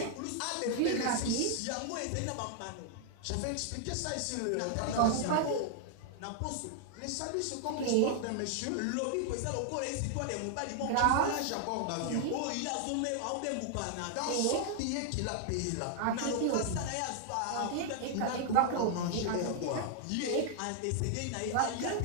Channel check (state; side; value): different; both; correlation 0.00